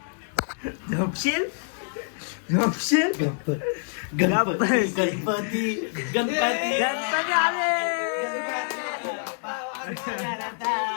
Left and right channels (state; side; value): silent; right; digital silence